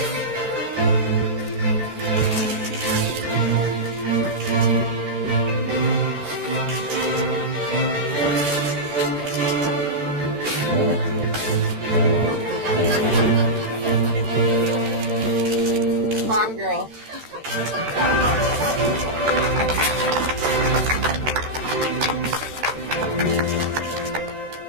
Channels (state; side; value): late; left; 13 ms